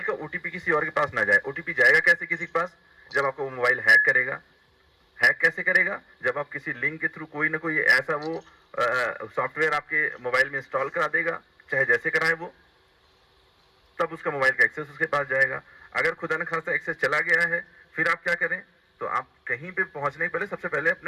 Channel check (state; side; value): identical; both; correlation 1.00